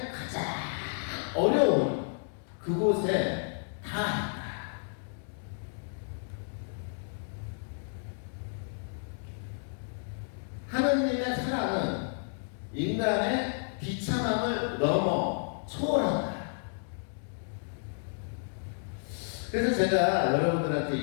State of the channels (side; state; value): right; silent; digital silence